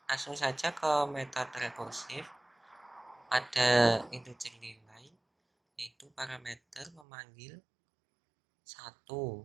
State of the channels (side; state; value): left; drops out; at 7.1 s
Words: Langsung saja ke metode rekursif. Ada integer nilai, yaitu parameter memanggil